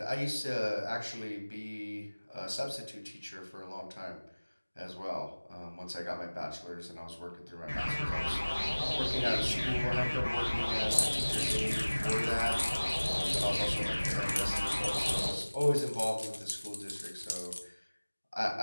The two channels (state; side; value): inverted; both; correlation -1.00